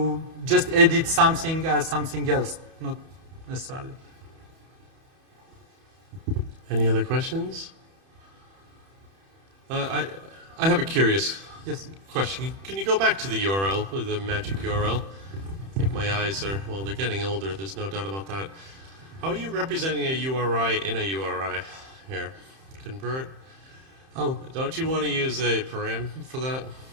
just edit something as something else, not necessarily. Any other questions? I have a curious Yes. Question. Can you go back to the URL, the magic URL? I think my eyes are, well, they're getting older. There's no doubt about that. How are you representing a URI in a URI here? Convert? Oh, Don't you want to use a param for that?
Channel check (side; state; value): left; late; 31 ms